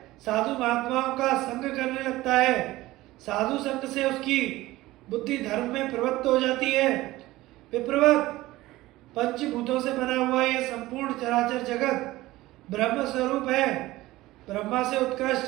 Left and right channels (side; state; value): left; quieter; 17.7 dB